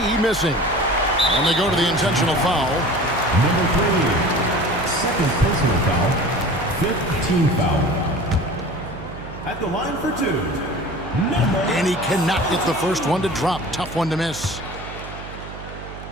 missing. And they go to the intentional foul. Number 3, second personal foul, 5th team foul. At the line for 2, number... And he cannot get the first one to drop. Tough one to miss.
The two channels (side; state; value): right; noise; hum, 13 dB below the sound